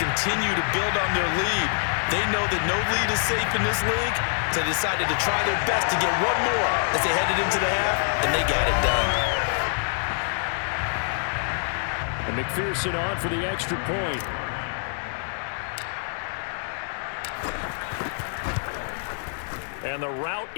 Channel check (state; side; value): silent; right; 61 dB below the other